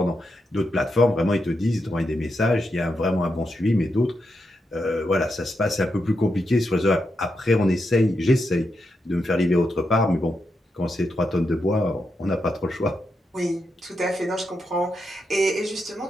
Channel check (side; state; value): both; normal; correlation 0.85